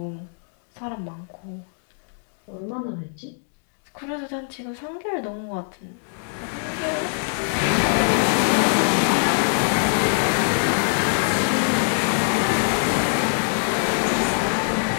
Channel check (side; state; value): right; silent; digital silence